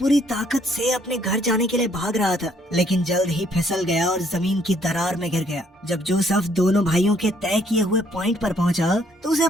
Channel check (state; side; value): normal; both; correlation 0.66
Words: ताकत से अपने घर जाने के लिए भाग रहा था, लेकिन जल्द ही फिसल गया और जमीन की दरार में गिर गया। जब जोसेफ दोनों भाइयों के तय किए हुए पॉइंट पर पहुंचा तो उसे